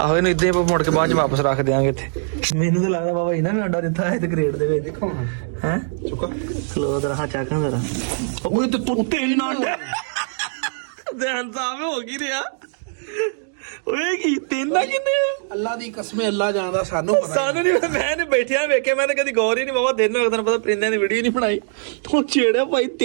ਇਹਨੂੰ ਇਦਾਂ ਮੁੜ ਕੇ ਬਾਅਦ ਚ ਵਾਪਸ ਰੱਖ ਦਿਆਂਗੇ ਇੱਥੇ। ਮੈਨੂੰ ਤਾਂ ਲੱਗਦਾ ਬਾਬਾ ਇਹਨਾਂ ਨੇ ਅੰਡਾ ਦਿੱਤਾ ਹੈ ਤੇ ਕ੍ਰੇਟ ਦੇ ਵਿੱਚ। ਦੇਖੋ ਹੈ ਚੁੱਕਾ ਖਲੋ ਜਰਾ, ਹਾਂ ਚੱਕਾਂ ਜਰਾ। ਓਏ ਤੇ ਤੁੱਤੇ ਹੀ ਨਾ ਅੰਡੇ ਧਿਆਨ ਸਾਹਿਬ ਹੋ ਗਈ ਰਿਹਾ। ਓਏ ਕੀ ਤੇਨਾ ਕਿੰਨੇ ਅੱਲਾ ਦੀ ਕਸਮ, ਅੱਲਾ ਜਾਣਦਾ, ਸਾਨੂੰ ਨਹੀਂ। ਮੈਂ ਨੇ ਬੈਠਿਆ ਵੇਖਿਆ, ਮੈਂ ਤਾਂ ਕਦੀ ਗੌਰ ਹੀ ਨਹੀਂ ਬਾਬਾ। ਦਿਨ ਤੈਨੂੰ ਪਤਾ ਪਰਿੰਦਿਆਂ ਦੀ ਵੀਡੀਓ ਨਹੀਂ ਬਣਾਈ। ਹੁਣ ਛੇੜਿਆ ਭਾਈ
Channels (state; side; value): silent; left; digital silence